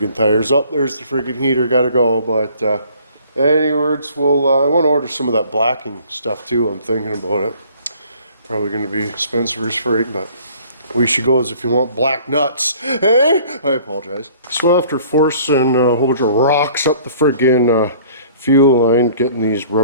tires. Up there's the friggin' heater, gotta go. But anyways, we'll I want to order some of that blacking stuff too. I'm thinking about it. Probably gonna be Spencer's frig, but we should go as if you want black nuts. Hey, I apologize. So after forcing a whole bunch of rocks up the friggin' fuel line, getting these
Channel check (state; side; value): inverted; both; correlation -0.54